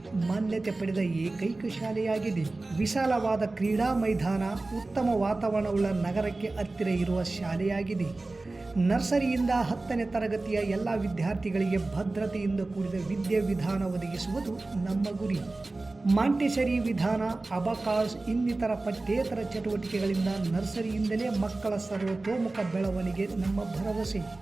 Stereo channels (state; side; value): quieter; left; 3.2 dB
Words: ಮಾನ್ಯತೆ ಪಡೆದ ಏಕೈಕ ಶಾಲೆಯಾಗಿದೆ. ವಿಶಾಲವಾದ ಕ್ರೀಡಾ ಮೈದಾನ, ಉತ್ತಮ ವಾತಾವರಣವುಳ್ಳ ನಗರಕ್ಕೆ ಹತ್ತಿರ ಇರುವ ಶಾಲೆಯಾಗಿದೆ. ನರ್ಸರಿಯಿಂದ 10ನೇ ತರಗತಿಯ ಎಲ್ಲ ವಿದ್ಯಾರ್ಥಿಗಳಿಗೆ ಭದ್ರತೆಯಿಂದ ಕೂಡಿದ ವಿದ್ಯಾವಿಧಾನ ಒದಗಿಸುವುದು ನಮ್ಮ ಗುರಿ. ಮಾಂಟೆಸರಿ ವಿಧಾನ, ಅಬಕಾಸ್ ಇನ್ನಿತರ ಪಠ್ಯೇತರ ಚಟುವಟಿಕೆಗಳಿಂದ ನರ್ಸರಿಯಿಂದಲೇ ಮಕ್ಕಳ ಸರ್ವತೋಮುಖ ಬೆಳವಣಿಗೆ ನಮ್ಮ ಭರವಸೆ.